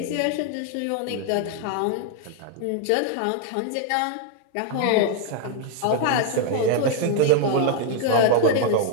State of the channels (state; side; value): different; both; correlation 0.00